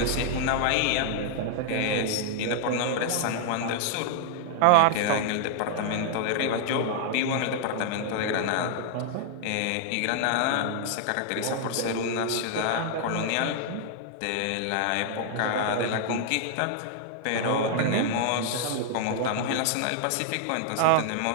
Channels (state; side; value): different; both; correlation 0.00